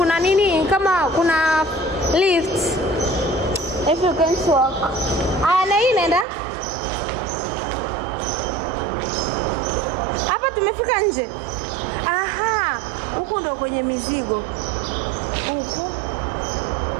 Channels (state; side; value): drops out; left; at 6.2 s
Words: nini, kama kuna lift if you can walk. Na hii nenda hapa, tumefika nje. Aha, huku ndo kwenye mizigo huku.